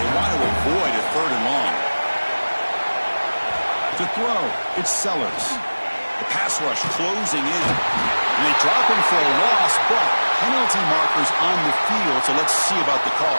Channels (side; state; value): both; inverted; correlation -1.00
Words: want to avoid a third and long. To throw, it's Sellers. The pass rush closing in. And they drop him for a loss, but penalty markers on the field, so let's see about the